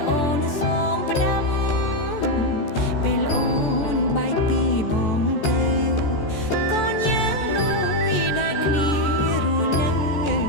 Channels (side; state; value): right; late; 14 ms